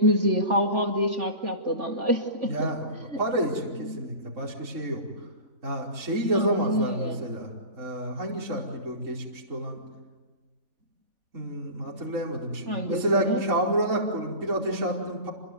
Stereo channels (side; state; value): left; late; 3.6 ms